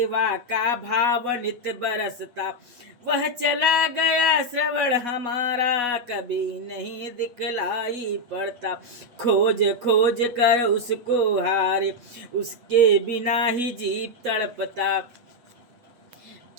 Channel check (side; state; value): left; late; 8.3 ms